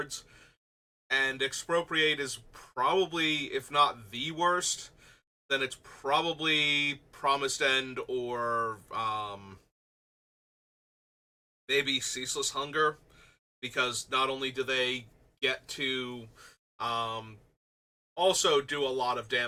And Expropriate is probably, if not the worst, then it's probably Promised End, or maybe Ceaseless Hunger, because not only do they get to also do a lot of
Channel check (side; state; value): both; identical; correlation 1.00